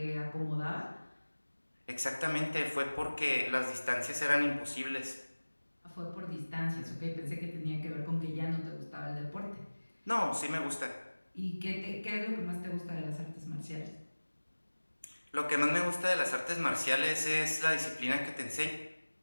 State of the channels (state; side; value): inverted; both; correlation -1.00